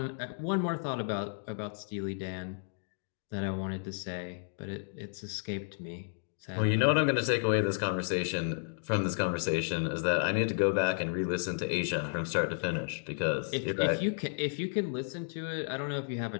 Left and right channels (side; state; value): right; silent; digital silence